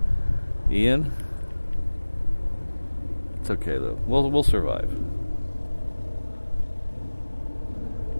Ian. It's okay though. We'll survive.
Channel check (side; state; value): both; inverted; correlation -1.00